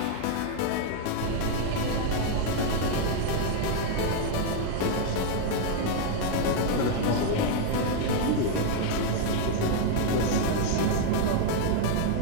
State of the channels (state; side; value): different; both; correlation 0.00